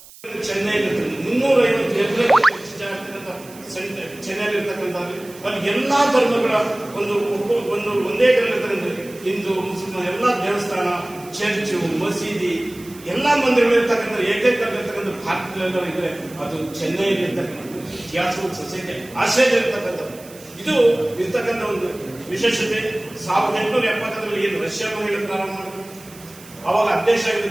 ಎಲ್ಲಾ ಧರ್ಮಗಳ ಒಂದೇ ಹಿಂದೂ ಮುಸ್ಲಿಂ ಎಲ್ಲಾ ದೇವಸ್ಥಾನ, ಚರ್ಚು, ಮಸೀದಿ, ಎಲ್ಲಾ ಮಂದಿರಗಳಿರ್ತಕ್ಕಂಥ ಏಕೈಕ ಭಾರತದಲ್ಲೆಲ್ಲರೂ ಇದ್ರೆ ಅದು ಚೆನ್ನೈಯಲ್ಲಿ ಇರ್ತಕ್ಕಂಥ ಥಿಯಾಸಾಫಿಕಲ್ ಸೊಸೈಟಿ ಆಶ್ರಯದಲ್ಲಿರ್ತಕ್ಕಂಥದ್ದು. ಇದು ಇರ್ತಕ್ಕಂಥ ಒಂದು ವಿಶೇಷತೆ. 1870ರಲ್ಲಿ ಏನು ರಷ್ಯಾ ಮಹಿಳೆ ಪ್ರಾರಂಭ ಮಾಡಿದ್ರು, ಅವಾಗ ಅಧ್ಯಕ್ಷ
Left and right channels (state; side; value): noise; right; hiss, 20 dB below the sound